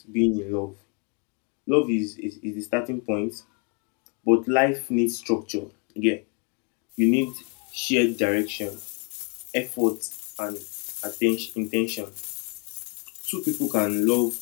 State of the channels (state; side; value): quieter; right; 34.8 dB